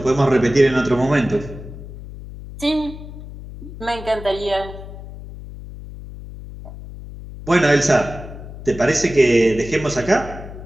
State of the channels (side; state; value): left; noise; hum, 13 dB below the sound